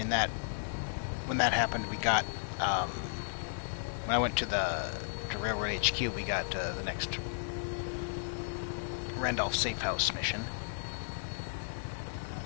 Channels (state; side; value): silent; right; 55 dB below the other